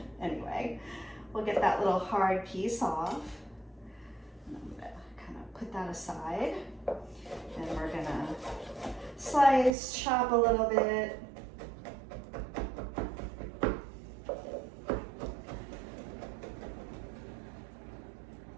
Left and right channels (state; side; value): drops out; left; at 9.7 s